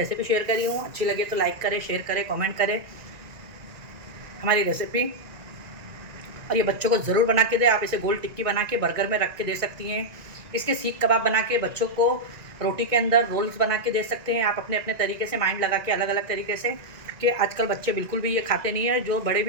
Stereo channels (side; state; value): left; late; 2.0 ms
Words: शेयर करी हूँ, अच्छी लगे तो लाइक करें, शेयर करें, कमेंट करें हमारी रेसिपी। और ये बच्चों को ज़रूर बना के दें। आप इसे गोल टिक्की बना के बर्गर में रख के दे सकती हैं। इसके सीख कबाब बना के बच्चों को रोटी के अंदर रोल्स बना के दे सकते हैं आप, अपने अपने तरीके से माइंड लगा के, अलग अलग तरीके से। कि आजकल बच्चे बिल्कुल भी ये खाते नहीं है, जो बड़े